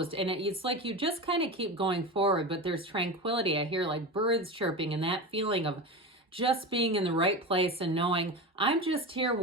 And it's like you just kind of keep going forward, but there's tranquility. I hear like birds chirping and that feeling of just being in the right place and knowing I'm just here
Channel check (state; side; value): normal; both; correlation 0.25